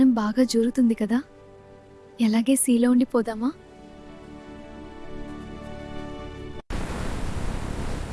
బాగా జరుగుతుంది కదా, ఎలాగే సీలో ఉండిపోదామా?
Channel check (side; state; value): both; identical; correlation 1.00